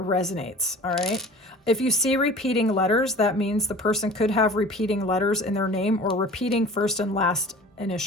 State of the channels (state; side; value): normal; both; correlation 0.42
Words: all right? If you see repeating letters, that means the person could have repeating letters in their name or repeating first and last